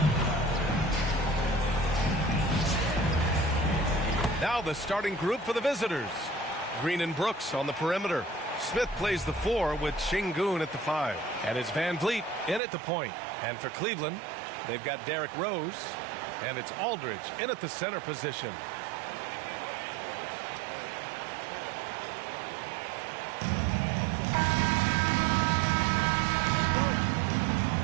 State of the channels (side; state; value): left; drops out; at 12.6 s